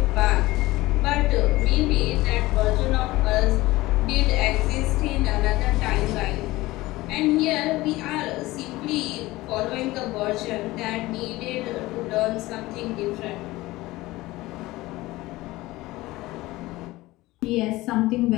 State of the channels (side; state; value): right; quieter; 19.0 dB